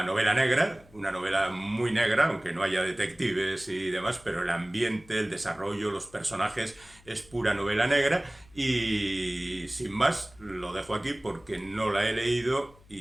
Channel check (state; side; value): noise; left; hum, 26 dB below the sound